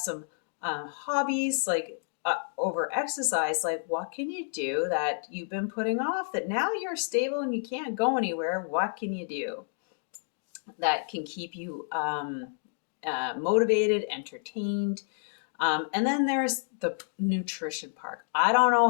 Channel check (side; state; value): right; silent; digital silence